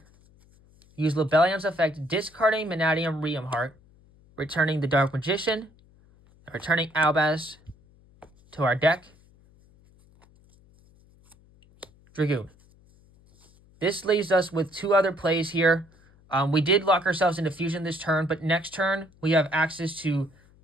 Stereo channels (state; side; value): noise; left; hum, 29 dB below the sound